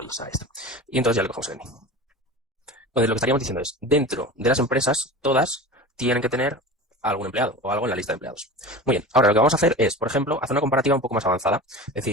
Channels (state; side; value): normal; both; correlation 0.33